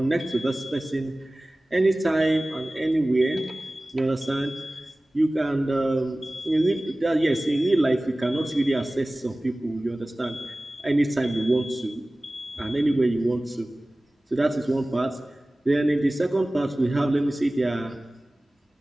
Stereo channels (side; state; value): both; normal; correlation 0.98